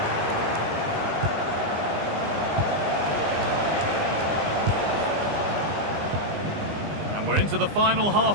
And we're into the final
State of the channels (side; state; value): left; late; 20 ms